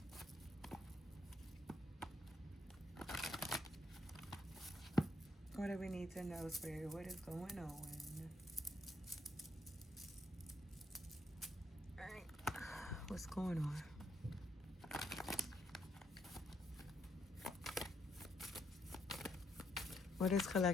What do we need to know, Spirit? What is going on? All right, what's going on? What does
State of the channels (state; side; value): normal; both; correlation 0.75